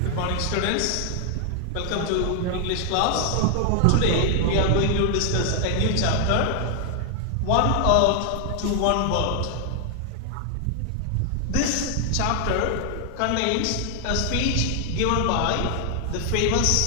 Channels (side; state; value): both; different; correlation 0.00